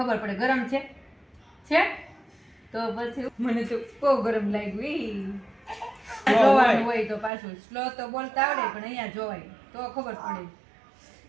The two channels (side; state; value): left; drops out; at 7.3 s